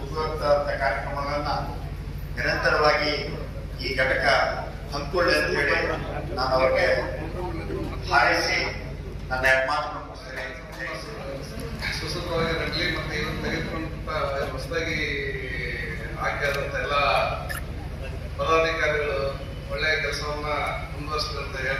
ಉಪಯುಕ್ತ ಕಾರ್ಯಕ್ರಮಗಳನ್ನ ನಿರಂತರವಾಗಿ ಈ ಘಟಕ ಹಮ್ಮಿಕೊಳ್ಳಿ ಅಂತ ಹೇಳಿ ನಾನು ಅವರಿಗೆ ಹಾರೈಸಿ ನನ್ನ ಮಾತನ್ನು ಮುಗಿಸ್ತೇನೆ. ಸುಸೂತ್ರವಾಗಿ ನಡಲಿ ಮತ್ತು ಇವತ್ತು ತೆಗೆದುಕೊಂಡ ಹೊಸದಾಗಿ ಆಯ್ಕೆಯಾದಂಥ ಎಲ್ಲ ಪದಾಧಿಕಾರಿಗಳು ಒಳ್ಳೆಯ ಕೆಲಸವನ್ನ ಮುಂದುವರಿಸಿದೆ ಅಂತ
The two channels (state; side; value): identical; both; correlation 1.00